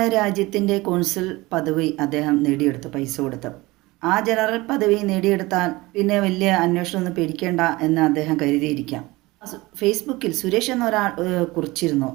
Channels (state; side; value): quieter; left; 21.1 dB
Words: രാജ്യത്തിൻ്റെ കോൺസുൽ പദവി അദ്ദേഹം നേടിയെടുത്തു പൈസ കൊടുത്ത്. ആ ജനറൽ പദവി നേടിയെടുത്താൽ പിന്നെ വലിയ അന്വേഷണമൊന്നും പേടിക്കേണ്ട എന്ന് അദ്ദേഹം കരുതിയിരിക്കാം. ഫേസ്ബുക്കിൽ സുരേഷ് എന്നൊരാൾ കുറിച്ചിരുന്നു